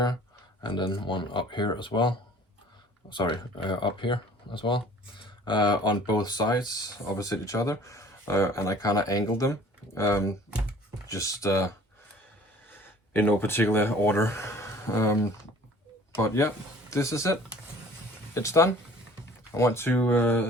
and then one up here as well. Sorry, up here as well. On both sides, opposite each other, and I kind of angled them, just in no particular order. But yeah, this is it. It's done. I want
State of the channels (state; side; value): normal; both; correlation 0.50